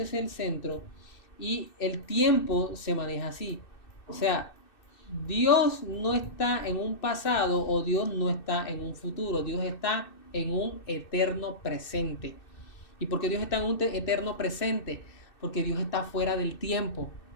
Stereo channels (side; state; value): right; late; 2.6 ms